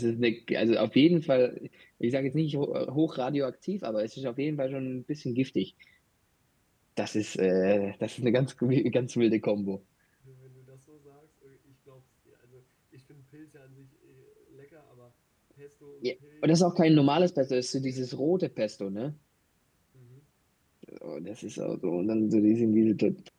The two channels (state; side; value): identical; both; correlation 1.00